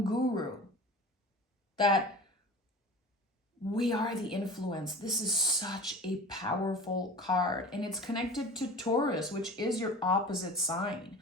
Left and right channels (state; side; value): normal; both; correlation 0.38